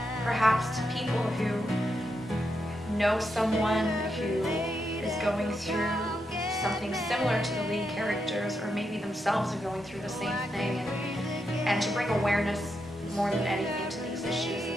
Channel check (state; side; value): normal; both; correlation 0.83